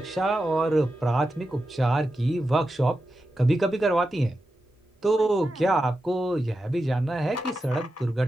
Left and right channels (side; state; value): both; normal; correlation 0.90